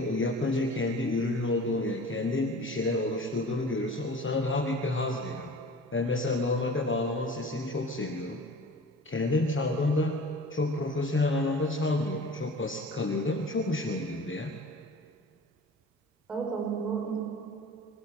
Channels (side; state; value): both; normal; correlation 0.41